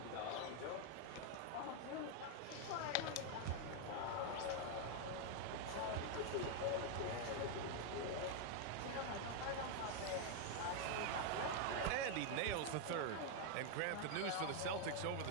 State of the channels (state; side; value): different; both; correlation 0.01